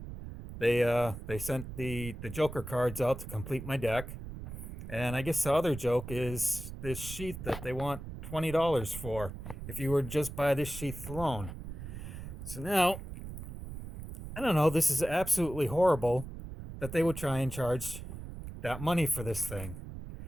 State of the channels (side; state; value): right; noise; rumble, 10 dB below the sound